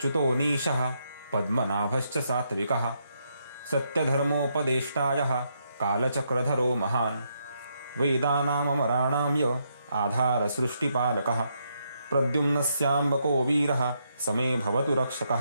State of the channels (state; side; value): inverted; both; correlation -0.78